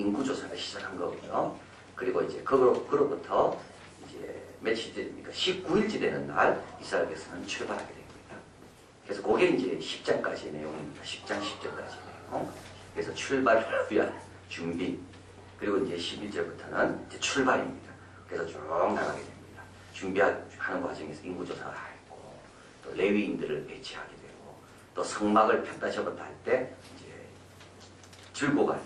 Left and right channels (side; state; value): both; identical; correlation 1.00